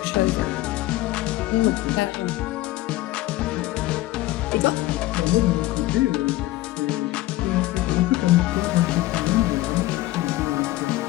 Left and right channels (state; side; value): quieter; right; 17.1 dB